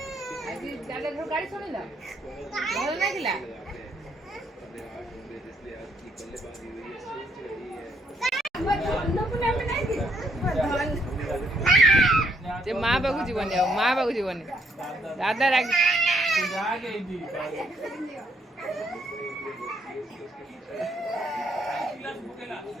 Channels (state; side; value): normal; both; correlation 0.73